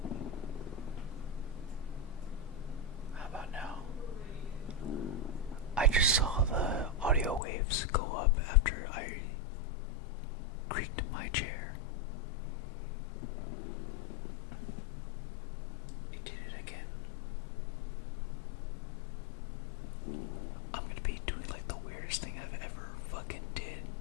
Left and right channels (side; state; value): right; drops out; at 7.4 s